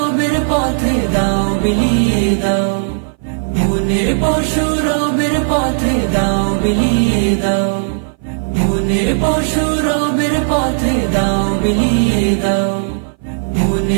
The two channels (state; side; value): silent; left; 60 dB below the other